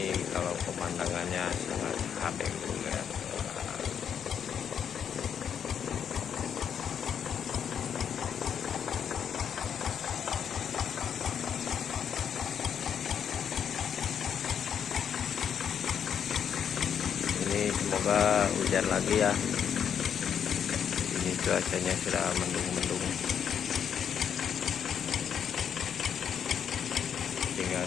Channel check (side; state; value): right; quieter; 8.1 dB